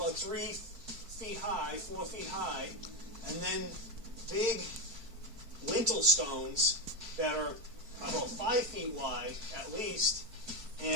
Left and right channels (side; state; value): left; late; 4.4 ms